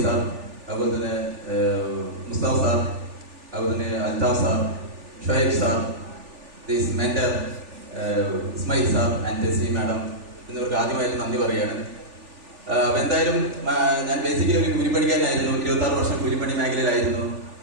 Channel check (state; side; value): late; left; 3.4 ms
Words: സാർ, അതുപോലെ തന്നെ മുസ്താഫ് സാർ, അതുപോലെ തന്നെ Althaf sir, Shuhaib sir, this mentor Ismail sir and Tessy madam എന്നിവർക്ക് ആദ്യമായിട്ട് നന്ദി പറയുകയാണ്. എന്തായാലും ഞാൻ ബേസിക്കലി ഒരു കൂലിപ്പണിക്കാരനായിരുന്നു. 26 വർഷം കൂലിപ്പണി മേഖലയിലായിരുന്നു.